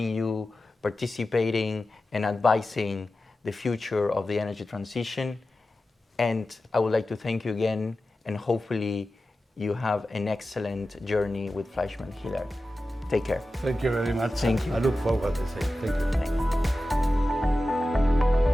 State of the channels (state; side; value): normal; both; correlation 0.94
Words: you participating and advising the future of the energy transition. And I would like to thank you again, and hopefully you have an excellent journey with Fleischmann Hiller. Take care. Thank you very much. Thank you. I look forward to saying thank you. Thank you.